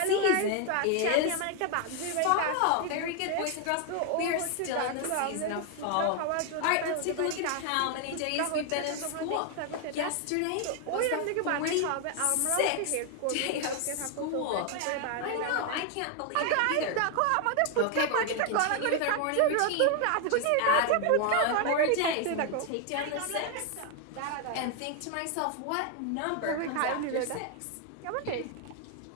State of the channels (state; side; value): different; both; correlation 0.01